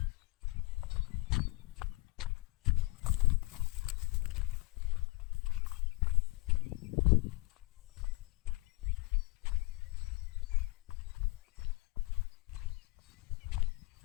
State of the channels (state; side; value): quieter; right; 24.0 dB